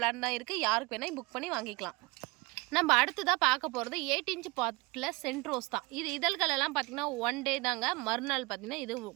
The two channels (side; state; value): left; quieter; 25.3 dB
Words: தான் இருக்குது. யாருக்கு வேணால் புக் பண்ணி வாங்கிக்கலாம். நம்ம அடுத்ததாக பார்க்க போகிறது 8 இன்ச்சு பாட்டில் சென்ட் ரோஸ் தான். இது இதழ்களெல்லாம் பார்த்திங்கன்னா 1 டே தாங்க, மறுநாள் பார்த்திங்கன்னா இது